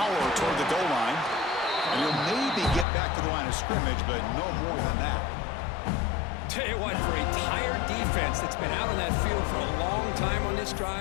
toward the goal line. And he'll maybe get back to the line of scrimmage, but no more than that. Tell you what, for a tired defense that's been out on that field for a long time on this last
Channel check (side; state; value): right; drops out; at 2.9 s